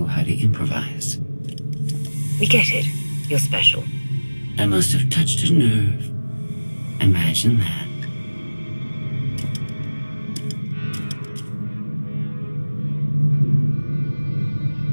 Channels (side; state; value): both; inverted; correlation -1.00